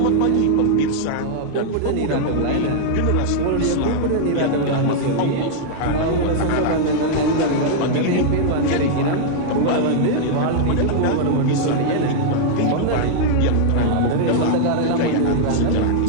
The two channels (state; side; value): different; both; correlation -0.01